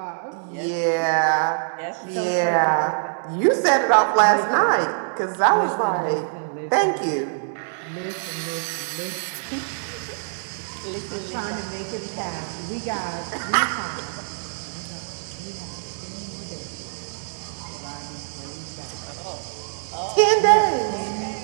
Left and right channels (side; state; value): left; silent; digital silence